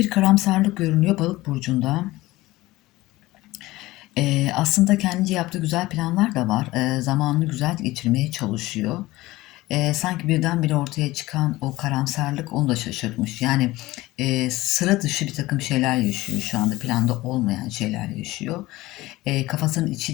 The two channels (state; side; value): quieter; right; 18.6 dB